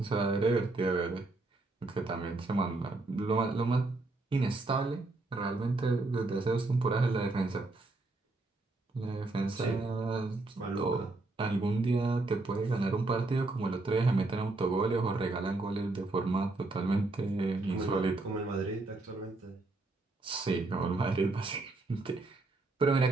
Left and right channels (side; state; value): left; quieter; 3.2 dB